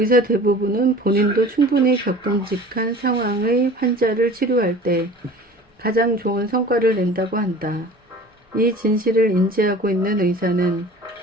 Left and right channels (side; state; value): both; normal; correlation 0.43